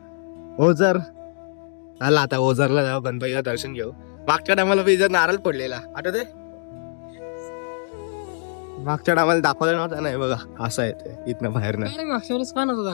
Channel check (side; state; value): right; silent; digital silence